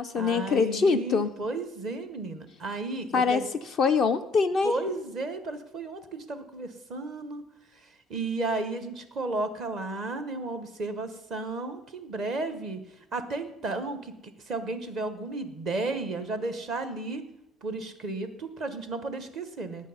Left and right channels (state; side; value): normal; both; correlation 0.57